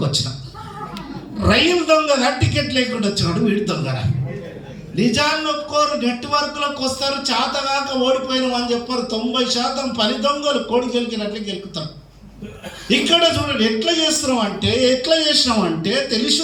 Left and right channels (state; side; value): identical; both; correlation 1.00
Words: వచ్చిన. రైలు దొంగగా టికెట్ లేకుండా వచ్చినాడు వీడి దొంగరా. నిజాన్ని ఒప్పుకోరు. నెట్వర్క్లోకి వస్తారు, చేతగాక ఓడిపోయినాం అని చెప్పారు. 90% పని దొంగలు కోడి గెలికినట్లు గెలుకుతారు. ఇక్కడ చూడండి ఎట్లా చేసినామంటే